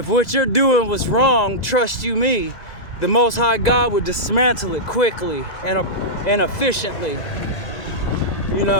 what you're doing was wrong, trust you me, the Most High God would dismantle it quickly and efficiently.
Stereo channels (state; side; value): late; right; 2.0 ms